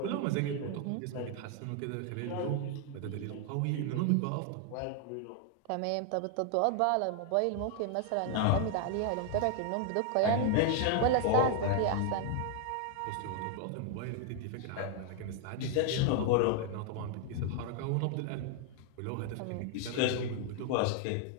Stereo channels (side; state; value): both; different; correlation 0.00